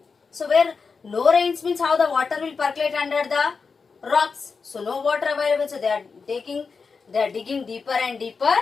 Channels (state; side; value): quieter; right; 5.0 dB